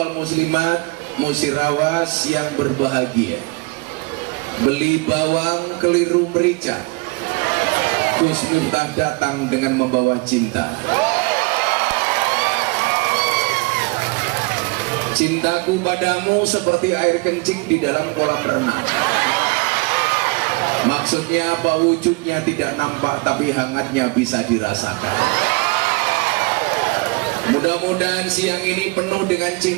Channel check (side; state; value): left; quieter; 26.5 dB